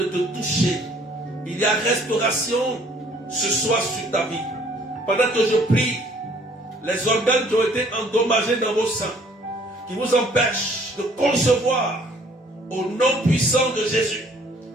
te toucher. Il y a restauration ce soir sur ta vie. Pendant que je prie, les organes qui ont été endommagés dans vos seins, qui vous empêchent de concevoir, au nom puissant de Jésus,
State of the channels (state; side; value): normal; both; correlation 0.59